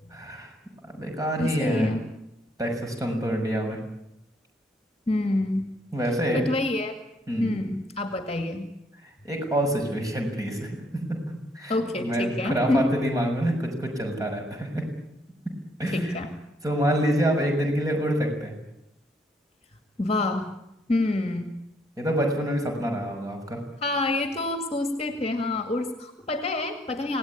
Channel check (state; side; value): normal; both; correlation 0.69